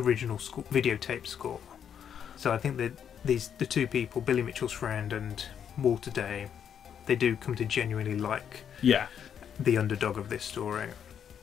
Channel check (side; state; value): right; quieter; 8.4 dB